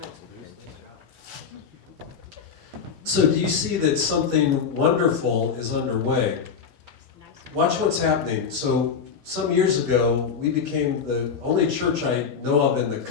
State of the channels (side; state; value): right; quieter; 6.3 dB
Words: So do you see that something wonderful is underway? Watch what's happening. So some years ago, we became the only church I know of in the